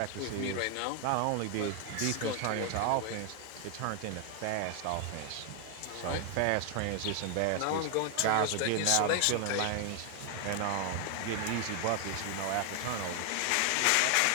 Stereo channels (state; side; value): different; both; correlation 0.01